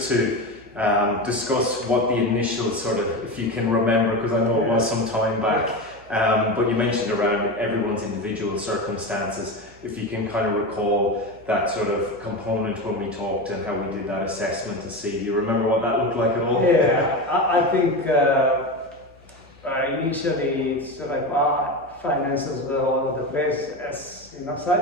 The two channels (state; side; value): noise; left; hum, 27 dB below the sound